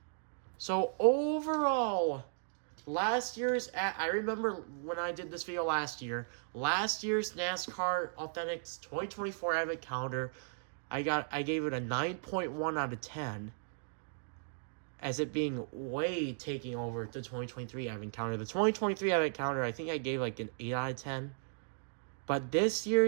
So overall, last year's, I remember when I did this video last year's NASCAR Authentics 2024 Advent Calendar, I gave it a 9.1 out of 10, as it being way taking over the 2023 Advent Calendar. The 2023 Advent Calendar, I think I gave like an 8 out of 10. But this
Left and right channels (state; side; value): silent; left; digital silence